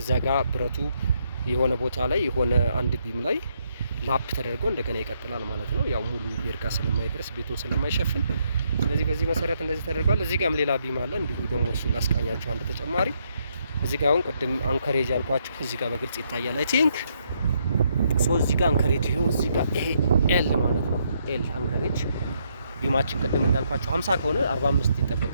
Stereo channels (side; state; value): both; inverted; correlation -0.75